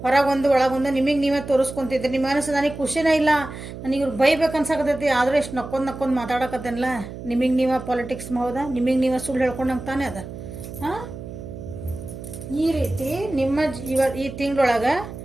ಹೊರಗೊಂದು ಒಳಗೊಂದು ನಿಮಗೆ ನೀವೇ ತೋರಿಸ್ಕೊತಿದ್ರಿ. ನಿಮ್ಮ ಮನಸ್ಸು ನನಗೆ ಖುಷಿನೇ ಇಲ್ಲ, ನನಗೆ ಇವ್ರು ಬೈಬೇಕು ಅನ್ಸಕತ್ತೈತಿ, ಆದರೂ ಎಷ್ಟು ನಕ್ಕೊಂಡು ಮಾತಾಡಕತ್ತೇನಲ್ಲ, ನಿಮಗೆ ನೀವೇ ಪಾಲಿಟಿಕ್ಸ್ ಹೌದಾ, ನಿಮಗೆ ನೀವೇ ಸುಳ್ಳು ಹೇಳ್ಕೊಂಡಂಗೆ ತಾನೇ ಅದ. ಈ ರೀತಿ ನಿಮ್ಮ ಈ ತಿಂಗಳೊಳಗೆ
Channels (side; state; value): right; noise; hum, 11 dB below the sound